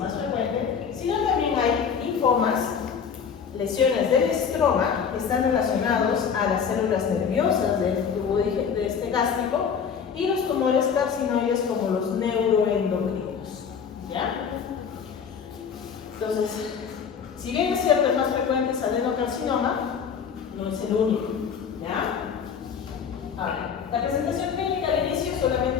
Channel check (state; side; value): quieter; right; 6.8 dB